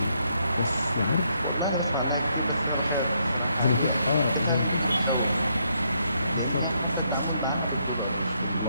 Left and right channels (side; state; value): both; inverted; correlation -0.75